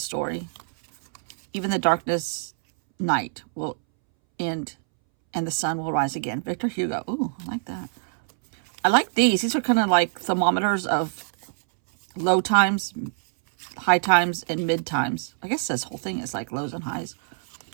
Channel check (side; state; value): left; silent; 62 dB below the other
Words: Even the darkness night will end and the sun will rise again. Victor Hugo. Ooh, I like that. I like these. These are kind of like thermometers of low times, high times, and mid times. I guess this whole thing is like lows and highs.